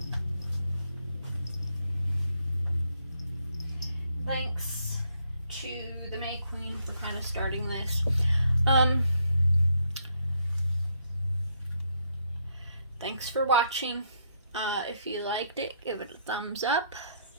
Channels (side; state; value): both; inverted; correlation -0.73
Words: Thanks to the May Queen for kind of starting this. Thanks for watching. If you liked it, give it a thumbs up.